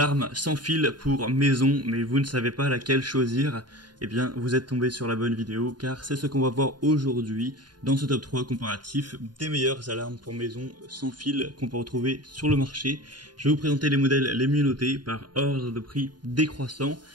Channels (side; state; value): left; late; 0.70 ms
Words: sans fil pour maison, mais vous ne savez pas laquelle choisir. Eh bien, vous êtes tombé sur la bonne vidéo, car c'est ce qu'on va voir aujourd'hui dans ce top 3 comparatif des meilleures alarmes pour maison sans fil qu'on peut retrouver sur le marché. Je vais vous présenter les modèles les mieux notés par ordre de prix décroissant.